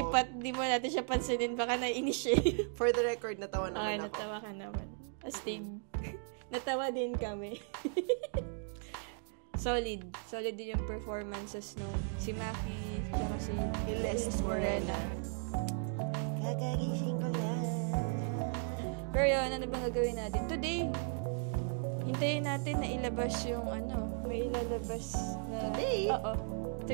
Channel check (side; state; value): left; silent; 54 dB below the other